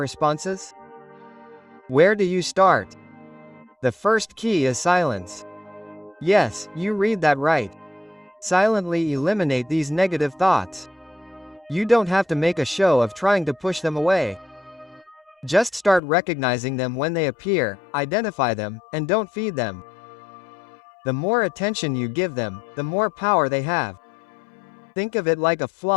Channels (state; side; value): drops out; right; at 16.0 s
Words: Where do you start? The first key is silence. Yes, you read that right. Silently eliminate these negative thoughts. You don't have to make a show of trying to push them away. Just start recognizing them when they appear, identify them, and don't feed them. The more attention you give them, the more power they have. Think of it like a